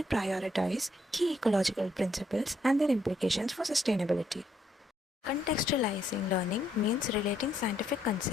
prioritize key ecological principles and their implications for sustainability. Contextualizing learning means relating scientific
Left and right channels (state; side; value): normal; both; correlation 0.73